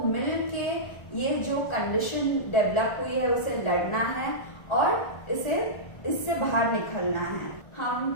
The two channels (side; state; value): right; late; 1.4 ms